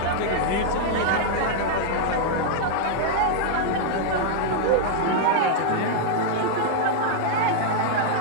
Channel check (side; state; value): both; different; correlation -0.01